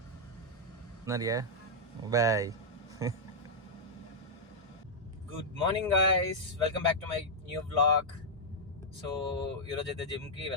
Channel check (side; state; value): both; normal; correlation -0.07